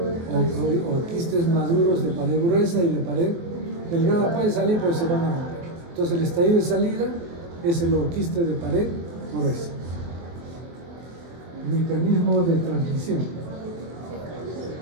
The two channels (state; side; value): late; left; 24 ms